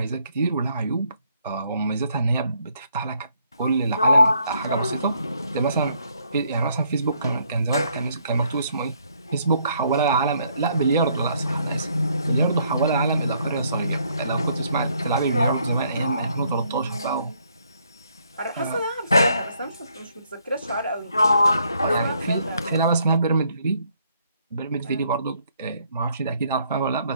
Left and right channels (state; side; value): inverted; both; correlation -0.69